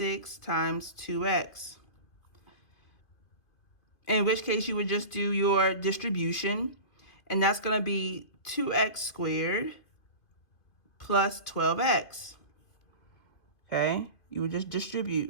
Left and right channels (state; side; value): late; right; 2.5 ms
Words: times 2x. In which case you would just do your distribution, and that's going to be 2x squared plus 12x. Okay, you would just